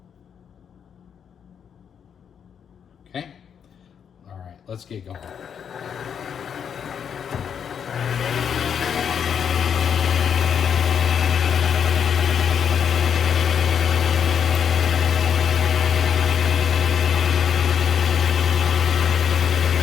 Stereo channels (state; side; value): quieter; right; 7.7 dB